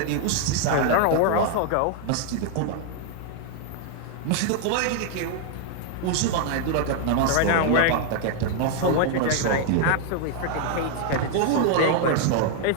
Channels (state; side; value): different; both; correlation 0.00